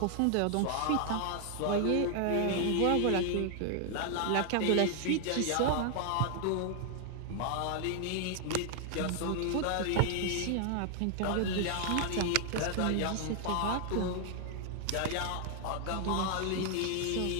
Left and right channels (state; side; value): different; both; correlation 0.00